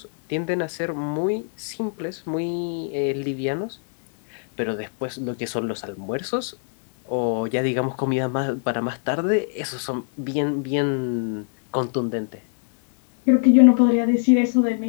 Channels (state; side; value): silent; right; digital silence